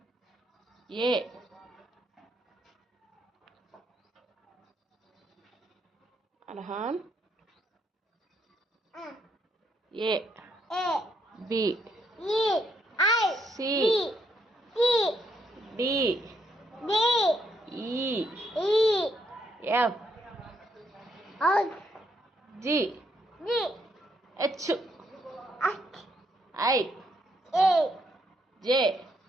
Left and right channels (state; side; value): normal; both; correlation 0.75